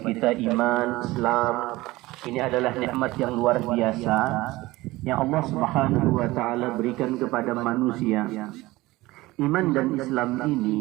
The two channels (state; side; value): quieter; left; 19.4 dB